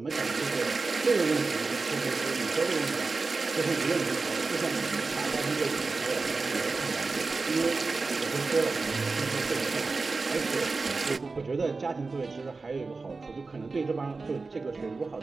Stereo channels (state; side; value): quieter; left; 4.0 dB